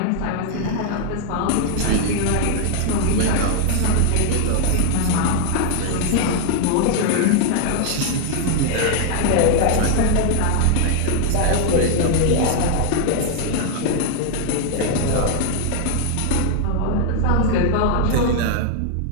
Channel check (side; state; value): both; different; correlation 0.00